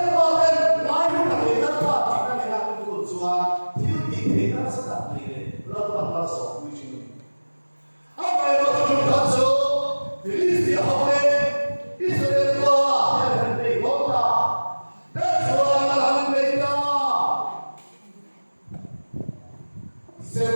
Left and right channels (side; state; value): both; inverted; correlation -1.00